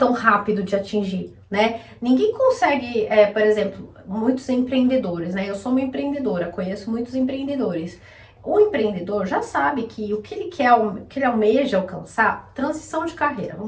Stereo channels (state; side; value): identical; both; correlation 1.00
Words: rápido de atingir, né? Ninguém consegue, por exemplo, muitos empreendedores, né? Eu sou uma empreendedora, conheço muitos empreendedores. O empreendedor já sabe que o que ele quer, o que ele almeja alcançar, transição de carreira.